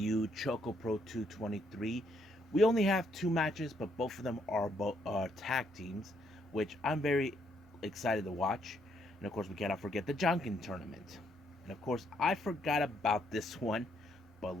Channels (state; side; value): normal; both; correlation 0.72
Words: ChocoPro 223. We only have two matches, but both of them are tag teams, which I'm very excited to watch. And of course, we cannot forget the Jonkin tournament. And of course, I forgot about this one,